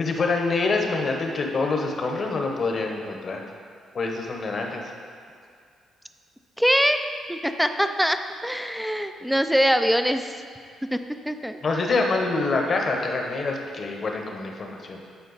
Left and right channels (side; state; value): both; normal; correlation 0.88